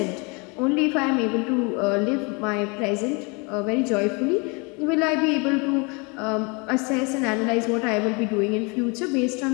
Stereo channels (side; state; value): right; quieter; 30.4 dB